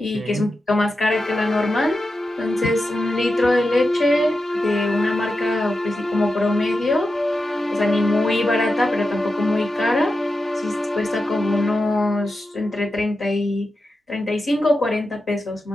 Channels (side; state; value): both; normal; correlation 0.90